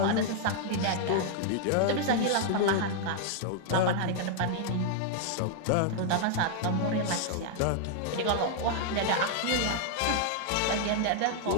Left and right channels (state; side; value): different; both; correlation -0.01